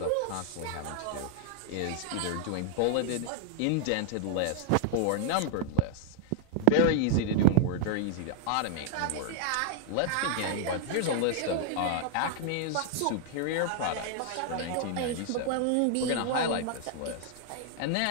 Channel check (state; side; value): different; both; correlation 0.00